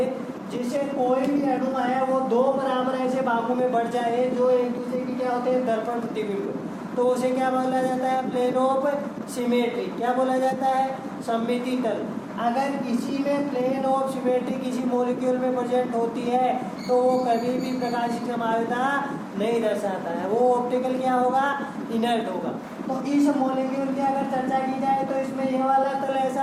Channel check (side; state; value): both; identical; correlation 1.00